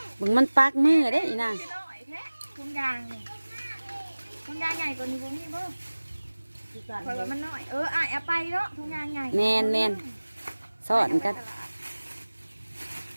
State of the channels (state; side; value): inverted; both; correlation -1.00